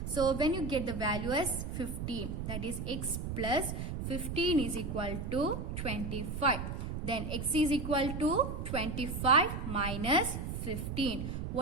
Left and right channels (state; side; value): noise; right; rumble, 5 dB below the sound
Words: So when you get the value as 50, that is x plus 15 is equal to 25. Then x is equal to 25 minus 15.